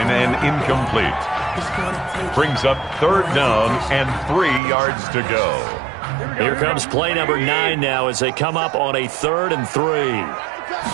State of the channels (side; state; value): left; drops out; at 4.6 s